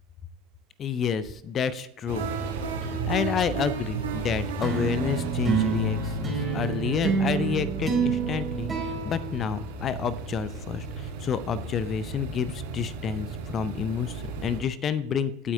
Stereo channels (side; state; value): both; normal; correlation 0.44